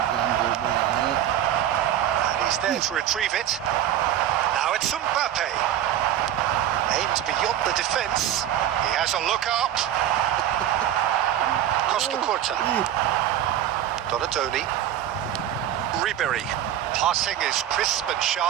he's there to retrieve it. Now it's Mbappe. Aimed beyond the defence. He has a look up. Costa Curta. Donadoni. Ribéry. Passing is crisp and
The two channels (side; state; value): left; quieter; 11.5 dB